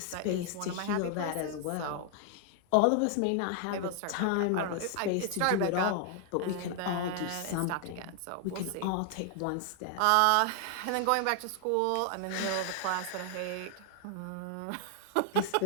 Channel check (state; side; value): different; both; correlation 0.00